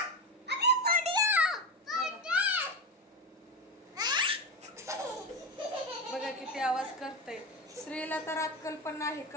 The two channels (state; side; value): normal; both; correlation 0.18